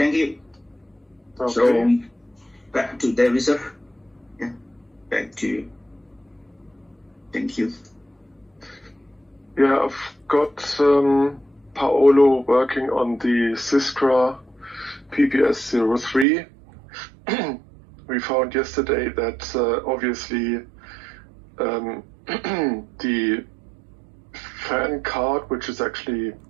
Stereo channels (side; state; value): left; drops out; at 16.2 s